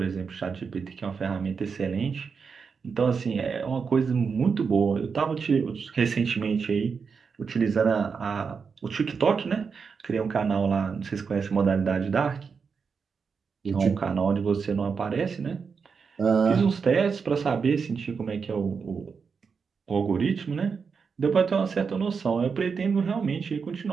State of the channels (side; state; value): left; quieter; 5.6 dB